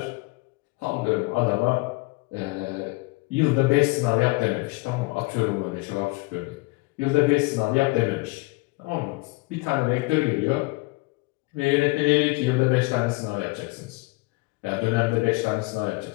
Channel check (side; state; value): right; quieter; 24.9 dB